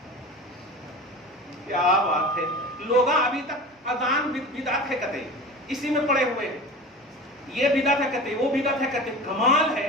کیا بات ہے. لوگ ابھی تک اذان بدعت ہے کہتے, اسی میں پڑے ہوئے ہیں. یہ بدعت ہے کہتے, وہ بدعت ہے کہتے. کمال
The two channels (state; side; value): normal; both; correlation 0.34